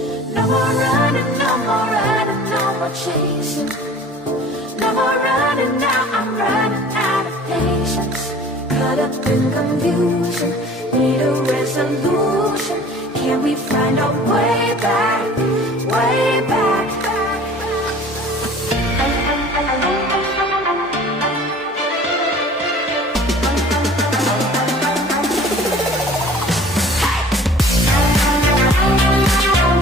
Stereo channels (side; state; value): both; normal; correlation 0.47